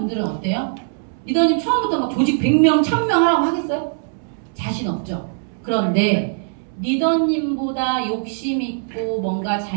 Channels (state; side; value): silent; left; 65 dB below the other